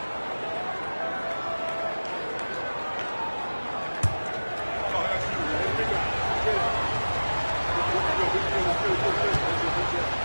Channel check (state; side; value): inverted; both; correlation -1.00